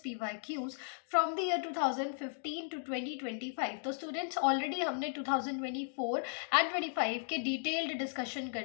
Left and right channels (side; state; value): right; silent; digital silence